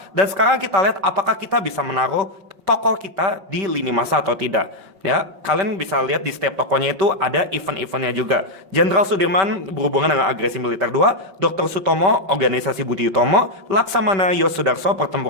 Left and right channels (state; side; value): late; left; 5.2 ms